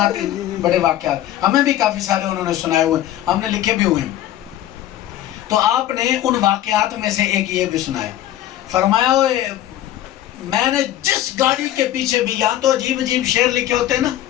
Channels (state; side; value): quieter; right; 13.0 dB